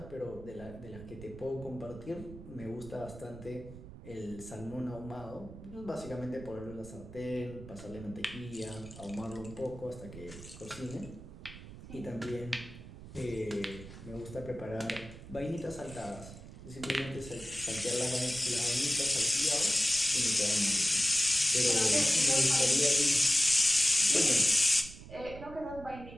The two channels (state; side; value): noise; right; rumble, 15 dB below the sound